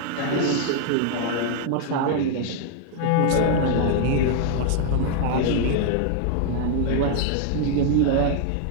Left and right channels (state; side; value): different; both; correlation 0.00